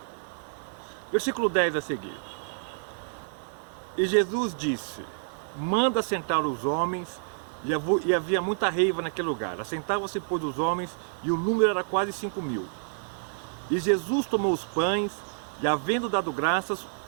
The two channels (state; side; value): silent; left; digital silence